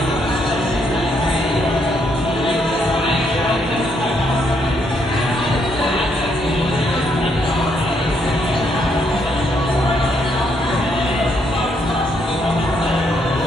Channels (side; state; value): both; normal; correlation 0.74